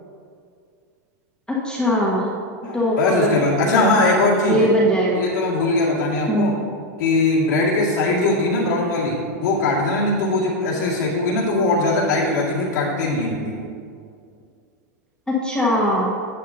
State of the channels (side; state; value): both; normal; correlation 0.08